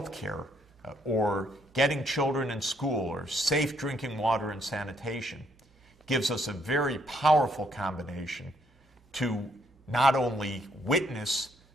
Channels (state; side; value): normal; both; correlation 0.71